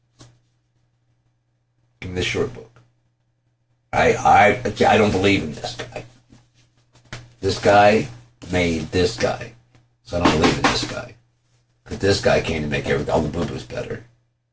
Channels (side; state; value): both; identical; correlation 1.00